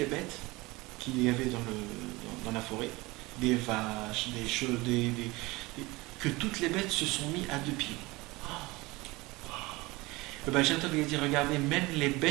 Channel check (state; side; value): quieter; left; 22.3 dB